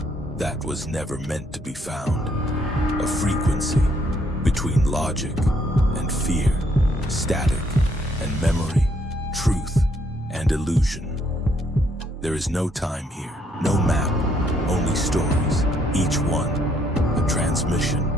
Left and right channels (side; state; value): both; normal; correlation 0.70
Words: that was never meant to be found. A frequency between logic and fear, static and memory, truth and illusion. There is no time here, no map, only stories, each one a transmission